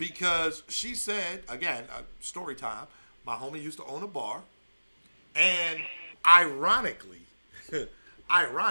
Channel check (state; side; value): inverted; both; correlation -1.00